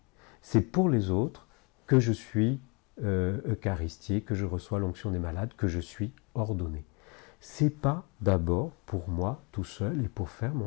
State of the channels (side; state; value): right; quieter; 31.7 dB